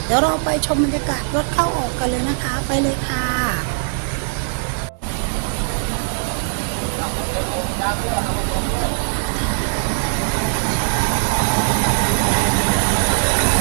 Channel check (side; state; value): left; silent; 66 dB below the other